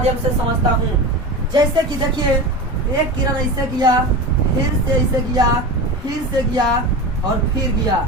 से समझता हूँ। जैसे कि देखिए एक किरण ऐसे गया, फिर से ऐसे गया, फिर से गया और फिर गया।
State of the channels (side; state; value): both; normal; correlation 0.27